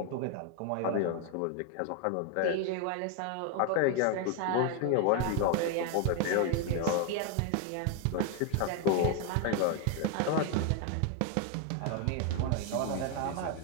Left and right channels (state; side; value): different; both; correlation 0.01